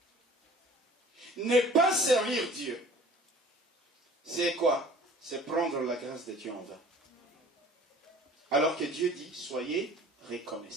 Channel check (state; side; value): normal; both; correlation 0.48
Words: Ne pas servir Dieu, c'est quoi? C'est prendre la grâce de Dieu en vain. Alors que Dieu dit, soyez